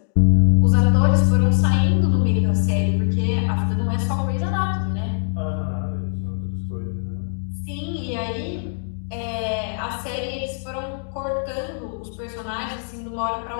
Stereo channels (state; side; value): silent; right; digital silence